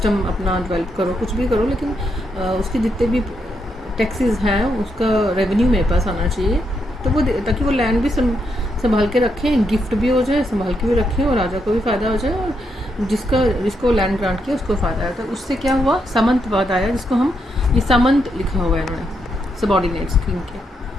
अपना डेवलप करो, कुछ भी करो, लेकिन उसके जितने भी टैक्सेस हैं उसका रेवेन्यू मेरे पास आना चाहिए. तो वो ताकि वो लैंड भी संभाल के रखें, गिफ्ट भी हो जाए, संभाल के भी रखें, और राजा को भी फ़ायदा हो जाए, और जिसको लैंड ग्रांट किया उसको फ़ायदा आया. तो उससे क्या हुआ, सामंतवाद आया, जिसको हम ये सामंत लिखा हुआ है इन्होंने, सबॉर्डिनेट्स किंग के.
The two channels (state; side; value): normal; both; correlation 0.80